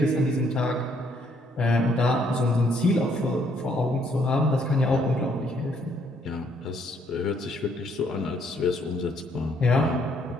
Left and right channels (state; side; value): normal; both; correlation 0.68